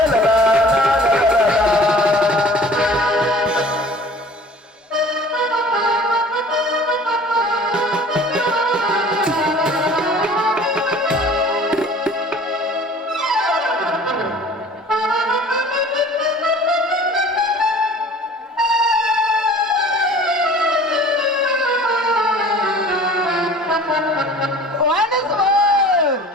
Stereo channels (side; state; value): both; normal; correlation 0.46